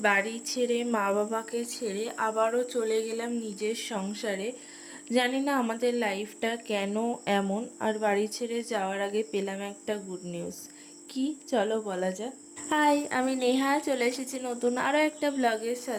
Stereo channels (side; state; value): both; identical; correlation 1.00